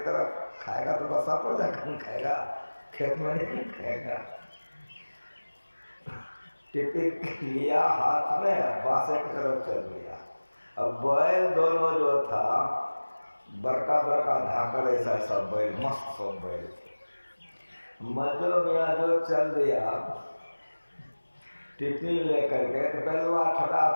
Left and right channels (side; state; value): both; inverted; correlation -1.00